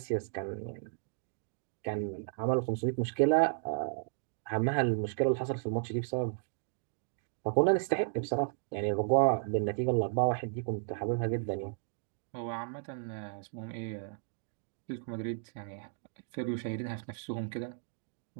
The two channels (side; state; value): left; silent; digital silence